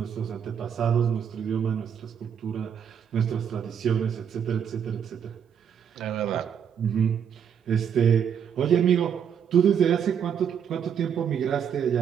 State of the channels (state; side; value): quieter; left; 8.0 dB